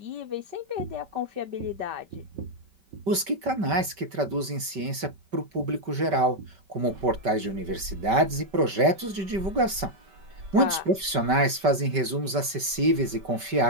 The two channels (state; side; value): late; left; 5.2 ms